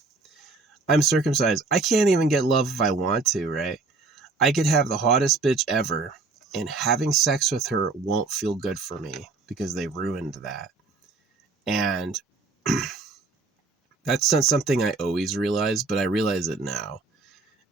I'm circumcised. I can't even get love if I want to, right? I could have the hottest bitch ever, and having sex with her won't feel good for me because they ruined that. And that's not something I always realized, but I realize it now.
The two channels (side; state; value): left; quieter; 3.8 dB